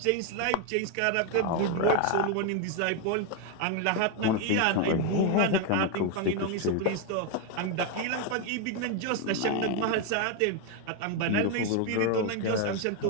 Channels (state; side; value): different; both; correlation 0.01